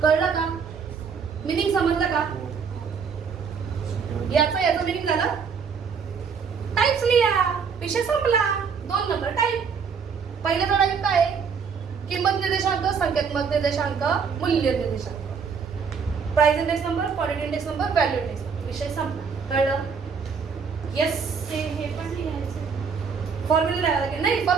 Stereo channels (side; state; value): left; quieter; 6.0 dB